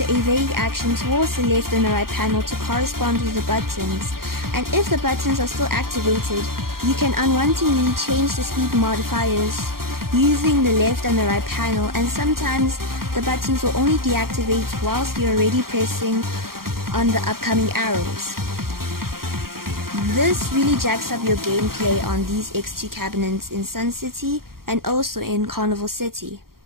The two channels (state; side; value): late; left; 0.93 ms